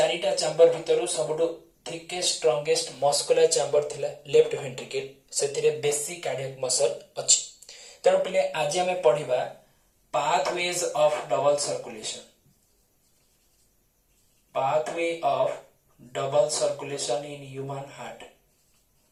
चैम्बर भितरु सबटो थिकेस्ट स्ट्रांगेस्ट मस्कुलर चैम्बर थिला लेफ्ट वेंट्रिकल, सेतिरे बेसी कार्डियक मसल अछि। तेणु पिले आज हमें पढिबा pathways of double circulation, pathway of double circulation in human heart,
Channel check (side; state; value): both; identical; correlation 1.00